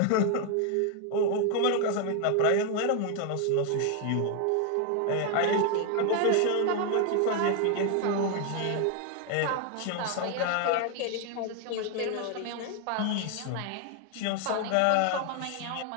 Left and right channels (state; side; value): different; both; correlation 0.00